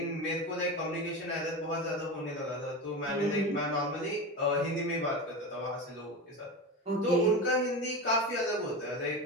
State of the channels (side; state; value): both; normal; correlation 0.23